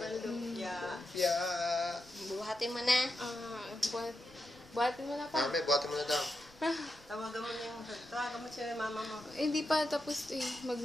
lumpia. Lumpia. Buhatin mo na. Buhatin mo na pa. Mami, buhatin mo na daw. Tawagan mo na yung... Tawagan mo siya mama mo. Hindi pa tapos Yung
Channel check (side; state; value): left; noise; rumble, 26 dB below the sound